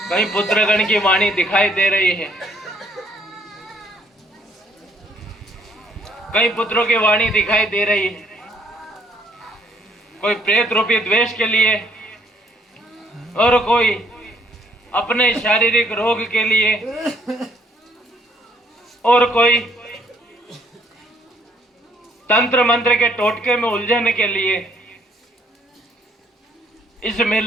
कई पुत्रगण की वाणी दिखाई दे रही है, कई पुत्रों की वाणी दिखाई दे रही है। कोई प्रेत रूपी द्वेष के लिए और कोई अपने शारीरिक रोग के लिए और कोई तंत्र मंत्र के टोटके में उलझने के लिए इस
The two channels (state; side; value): normal; both; correlation 0.66